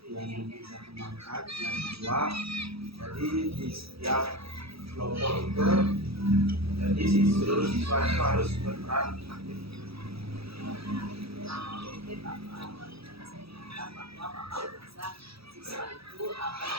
yang bisa bermanfaat. Yang kedua, jadi di setiap kelompok itu jadi seluruh siswa itu harus berperan aktif. Mungkin Bapak saya minta bahwa Bapak bisa siswa itu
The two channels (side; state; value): left; late; 0.77 ms